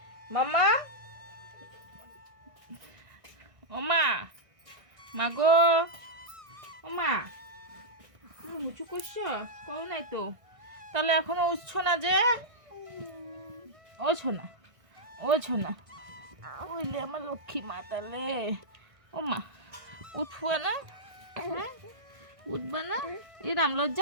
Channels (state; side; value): late; left; 1.6 ms